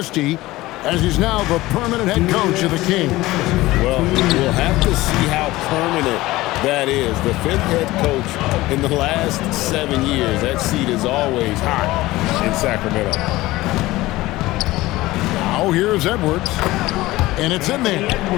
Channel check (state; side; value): quieter; right; 18.4 dB